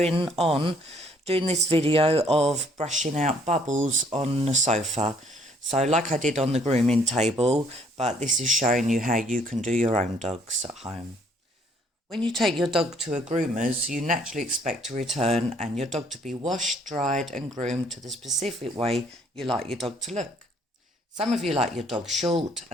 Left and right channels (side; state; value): both; normal; correlation 0.63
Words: on doing this video of brushing out bubbles on the sofa. So like I did on the grooming table, but this is showing you how you can do your own dogs at home. When you take your dog to a groomer's, you naturally expect to return and your dog to be washed, dried and groomed to the specific way you like your dog to look. Some of you like your dog short